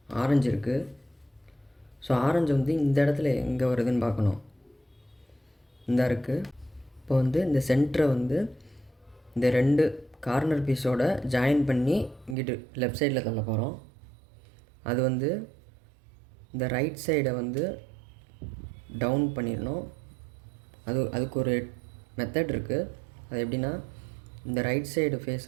ஆரஞ்சு இருக்குது. ஸோ ஆரஞ்சு வந்து இந்த இடத்துல எங்கே வருதுன்னு பார்க்கணும். இந்த இருக்குது. இப்போ வந்து இந்த சென்டரை வந்து இந்த 2 கார்னர் பீஸோட ஜாயின் பண்ணி இங்கிட்டு லெஃப்ட் சைடில் தள்ள போகிறோம். அது வந்து இந்த ரைட் சைடை வந்து டவுன் பண்ணிடணும். அதுக்கு ஒரு மெத்தட் இருக்குது. அது எப்படின்னா, இந்த ரைட் சைடு ஃபேஸை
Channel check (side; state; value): left; drops out; at 12.4 s